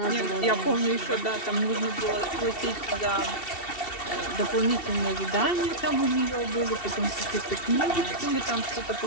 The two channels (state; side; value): late; right; 2.7 ms